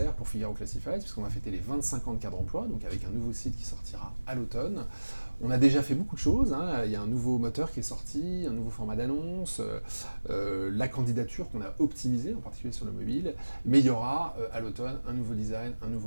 pour Figaro Classified, puisqu'on va fêter les 25 ans de Cadre Emploi, donc avec un nouveau site qui sortira à l'automne. On a déjà fait beaucoup de choses, il y a un nouveau moteur qui est sorti, un nouveau format d'annonce, la candidature qu'on a optimisée, en particulier sur le mobile, mais il y aura à l'automne un nouveau design, un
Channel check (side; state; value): both; inverted; correlation -1.00